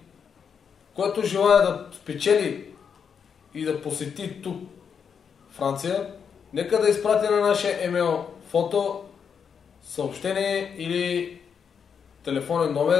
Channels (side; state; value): right; quieter; 6.8 dB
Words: Който желая да спечели и да посети тук Франция, нека да изпрати на нашия емейл фото, съобщение или телефонен